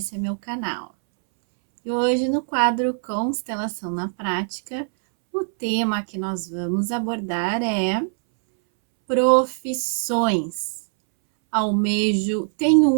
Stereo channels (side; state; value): left; silent; 64 dB below the other